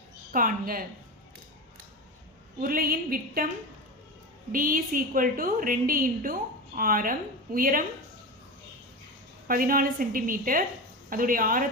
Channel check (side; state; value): both; normal; correlation 0.23